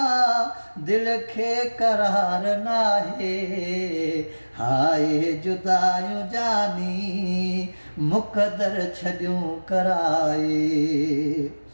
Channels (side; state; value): both; inverted; correlation -1.00